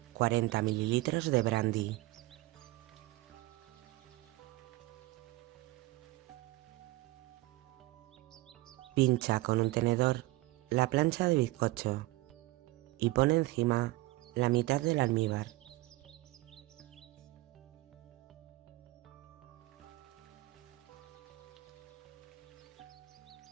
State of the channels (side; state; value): left; quieter; 19.3 dB